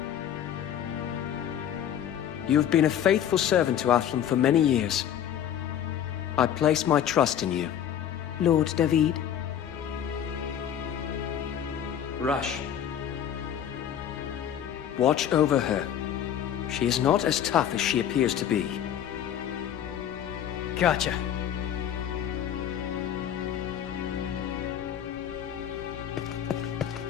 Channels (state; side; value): quieter; right; 9.8 dB